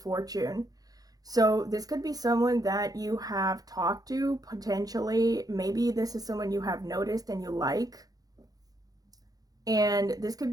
So this could be someone that you have talked to, potentially. Maybe this is someone you have noticed and you like. And this could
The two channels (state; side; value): late; left; 0.18 ms